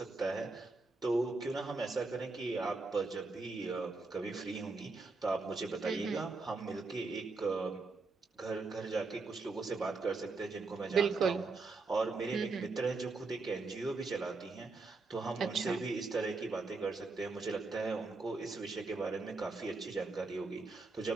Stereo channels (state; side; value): quieter; left; 3.8 dB